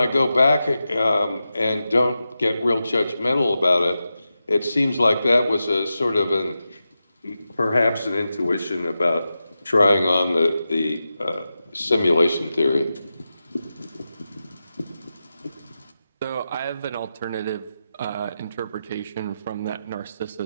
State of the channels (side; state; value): both; inverted; correlation -0.91